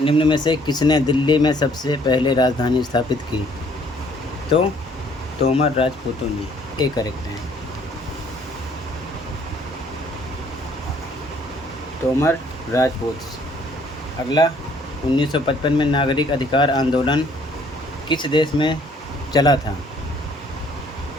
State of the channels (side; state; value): both; normal; correlation 0.61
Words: निम्न में से किसने दिल्ली में सबसे पहले राजधानी स्थापित की? तो तोमर राजपूतों ने। ये करेक्ट है, तोमर राजपूत। अगला, 1955 में नागरिक अधिकार आंदोलन किस देश में चला था?